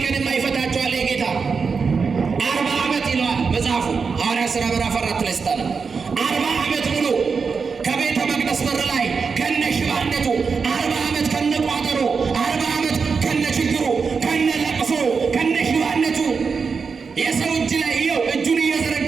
ቀን የማይፈታቸዋል የጌታ 40 ዓመት ይለዋል መጽሐፉ ሐዋርያት ሥራ ምዕራፍ 4 ላይ ስታነ 40 ዓመት ሙሉ ከቤተ መቅደስ በር ላይ ከነ ሽባነቱ 40 ዓመት ከነ ቋጠሮ 40 ዓመት ከነ ችግሩ ከነ ለቅሶ ከነ ሽባነቱ የሰው እጅ ላይ ይኸው እጁን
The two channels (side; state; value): left; quieter; 5.3 dB